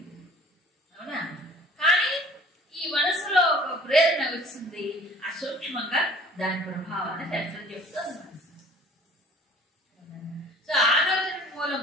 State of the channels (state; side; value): normal; both; correlation 0.50